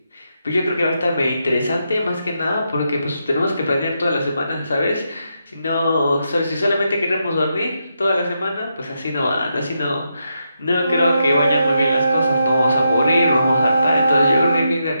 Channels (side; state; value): both; inverted; correlation -0.83